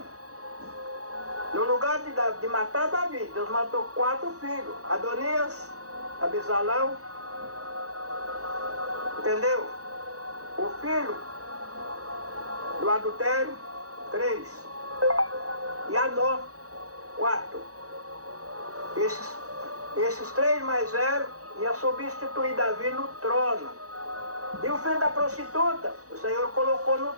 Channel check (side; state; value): left; late; 0.66 ms